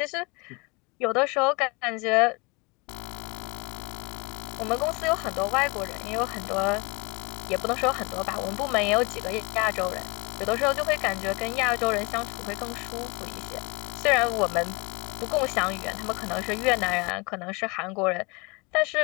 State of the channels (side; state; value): right; quieter; 28.3 dB